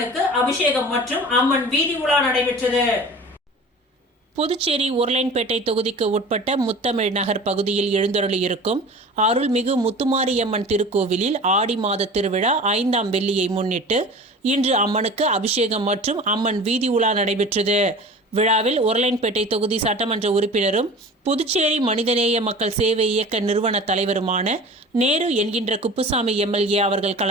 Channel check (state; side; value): normal; both; correlation 0.39